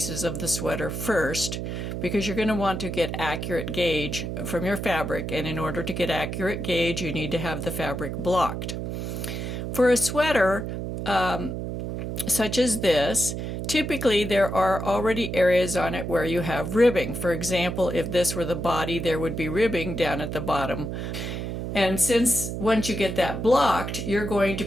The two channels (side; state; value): right; noise; hum, 4 dB below the sound